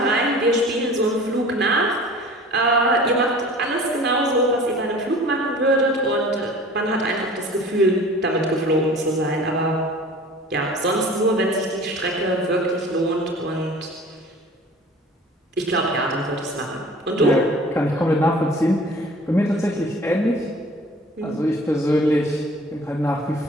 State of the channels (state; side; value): normal; both; correlation 0.45